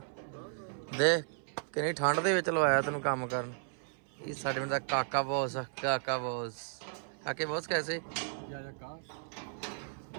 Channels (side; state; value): left; silent; 55 dB below the other